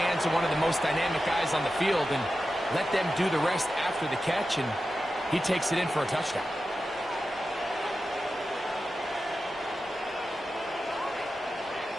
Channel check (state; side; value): normal; both; correlation 0.92